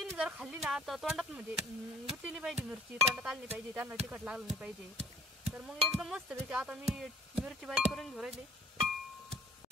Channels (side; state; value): both; normal; correlation 0.51